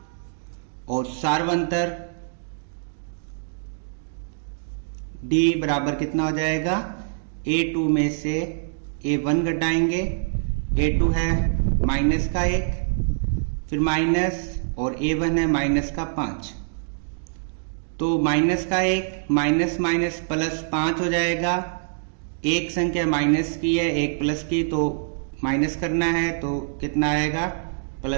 और सार्वंतर डी बराबर कितना हो जाएगा, A2 में से A1 घटाएंगे। A2 है -1, फिर माइनस और A1 है -5। तो -1 माइनस माइनस प्लस 5 हो जाएगा। एक संख्या माइनस की है, एक प्लस की, तो माइनस करना है तो कितना आएगा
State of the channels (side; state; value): left; silent; digital silence